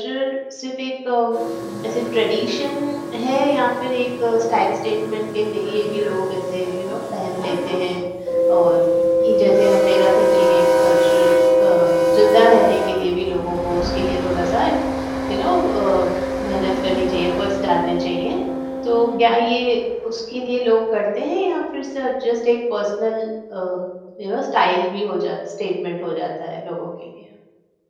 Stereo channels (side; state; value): both; identical; correlation 1.00